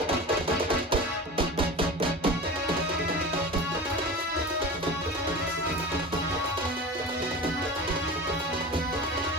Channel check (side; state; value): both; normal; correlation 0.32